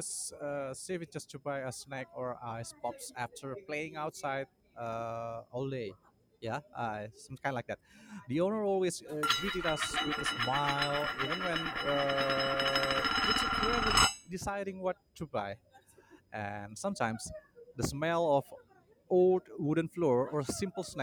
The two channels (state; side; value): identical; both; correlation 1.00